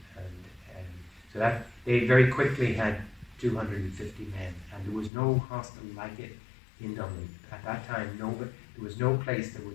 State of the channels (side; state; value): right; drops out; at 5.1 s